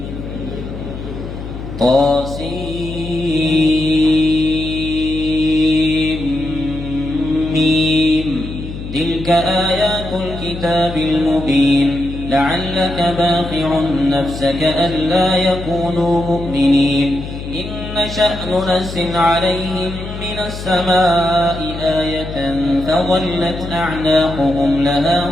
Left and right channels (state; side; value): noise; left; hum, 9 dB below the sound